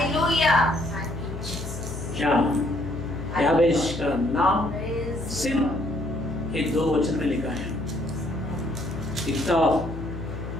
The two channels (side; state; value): left; noise; hum, 9 dB below the sound